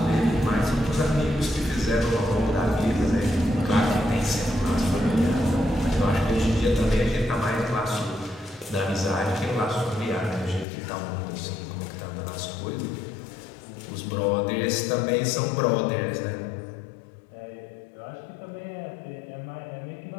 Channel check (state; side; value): drops out; right; at 10.7 s